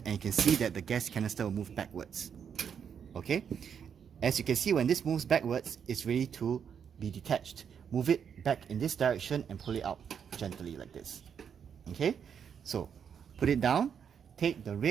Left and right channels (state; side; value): quieter; left; 7.6 dB